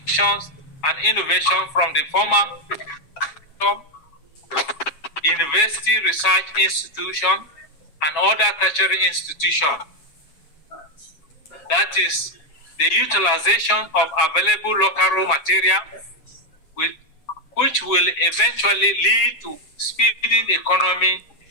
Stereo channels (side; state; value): right; late; 7.2 ms